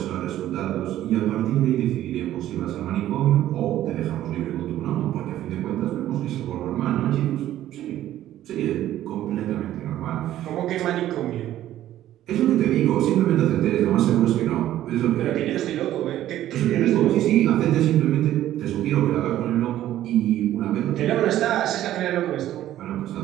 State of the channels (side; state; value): left; quieter; 13.0 dB